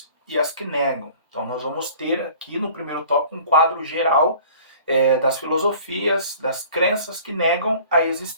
e as que negam. Então nós vamos ter aqui no primeiro tópico um quadro geral das filosofias, das crenças que negam a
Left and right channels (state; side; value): inverted; both; correlation -0.48